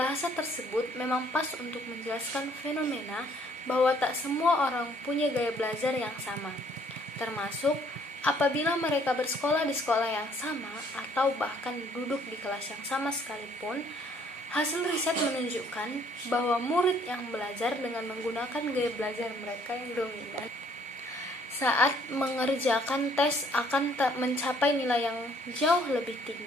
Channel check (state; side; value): normal; both; correlation 0.62